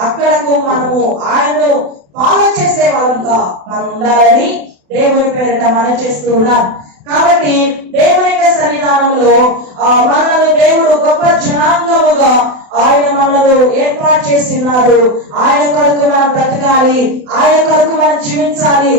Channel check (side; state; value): left; late; 28 ms